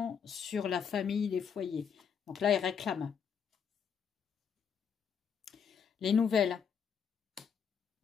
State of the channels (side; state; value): right; quieter; 7.0 dB